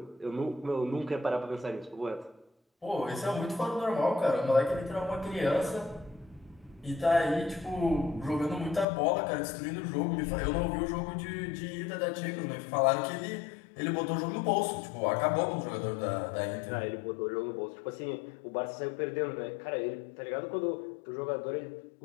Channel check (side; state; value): right; drops out; at 8.8 s